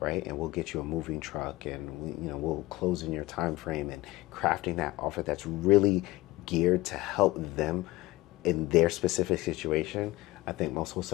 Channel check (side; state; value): right; quieter; 19.1 dB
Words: And we'll get you a moving truck, and we'll close in your time frame, and crafting that offer that's really geared to help them in their specific situation. I think most